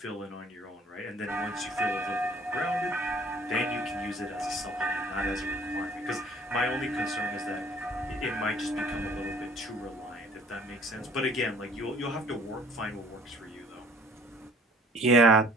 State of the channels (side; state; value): both; normal; correlation 0.53